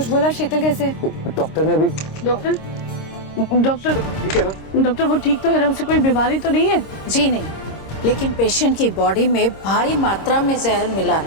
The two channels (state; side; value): late; right; 26 ms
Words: बोला? शीतल कैसे? डॉक्टर ने अभी डॉक्टर ठीक है ना? डॉक्टर वो ठीक तो है ना, उसे कोई बीमारी तो नहीं है? जी नहीं, लेकिन पेशेंट की बॉडी में भारी मात्रा में जहर मिला